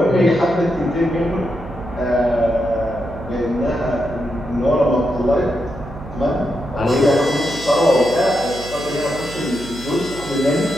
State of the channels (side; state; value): right; noise; hum, 15 dB below the sound